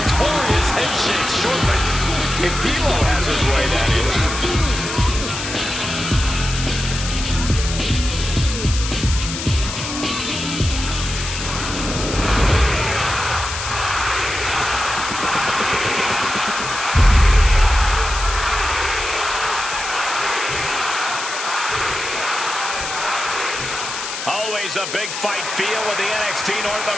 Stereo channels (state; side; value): noise; left; hiss, 6 dB below the sound